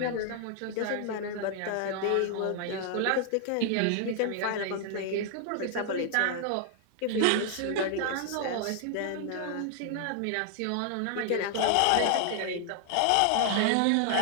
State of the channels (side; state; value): both; different; correlation 0.00